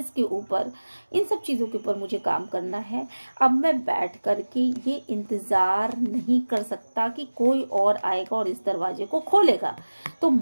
के ऊपर, इन सब चीज़ों के ऊपर मुझे काम करना है। अब मैं बैठ कर के ये इंतज़ार नहीं कर सकता कि कोई और आएगा और इस दरवाजे को खोलेगा, तो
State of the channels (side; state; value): both; inverted; correlation -1.00